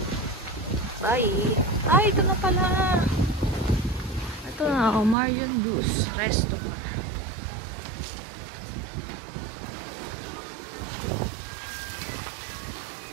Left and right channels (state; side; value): drops out; left; at 5.2 s